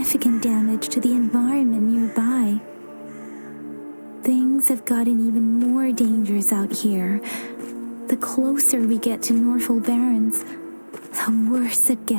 damage to the environment nearby. Things have gotten even more dangerous out here. The closer we get to Norfolk Barrens, the worse it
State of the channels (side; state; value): both; inverted; correlation -1.00